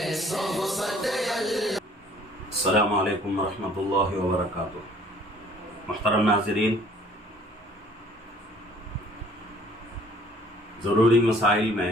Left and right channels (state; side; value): normal; both; correlation 0.56